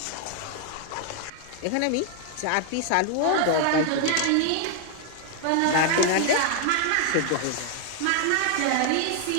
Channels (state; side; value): different; both; correlation 0.00